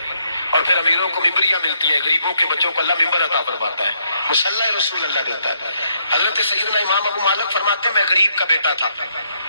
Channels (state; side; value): inverted; both; correlation -0.73